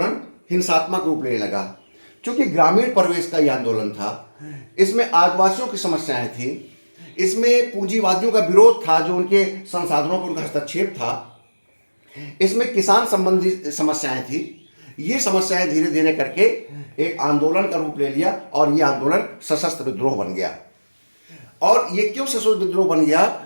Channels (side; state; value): both; inverted; correlation -1.00